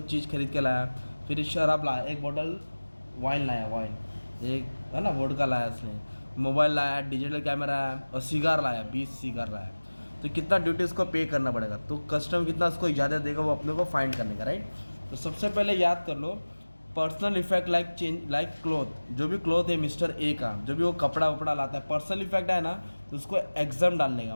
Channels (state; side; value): inverted; both; correlation -1.00